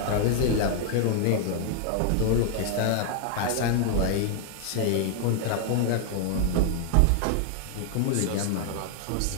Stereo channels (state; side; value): different; both; correlation 0.00